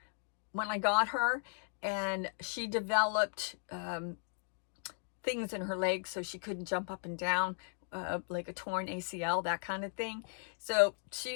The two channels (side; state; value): right; silent; digital silence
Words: when I got her. And she developed things in her legs, so she couldn't jump up and down. Like a torn ACL, that kind of thing. So